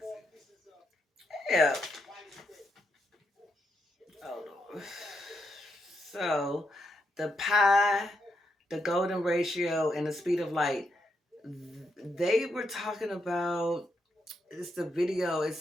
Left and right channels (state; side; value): normal; both; correlation 0.80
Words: see. Yeah. Hold on. So, the pi, the golden ratio, and the speed of light, they were talking about, it's the video,